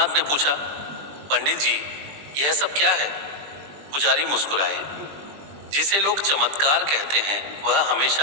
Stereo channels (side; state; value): left; late; 20 ms